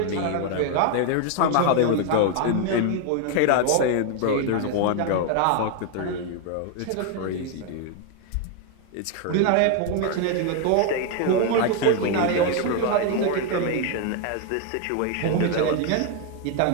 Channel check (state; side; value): different; both; correlation 0.01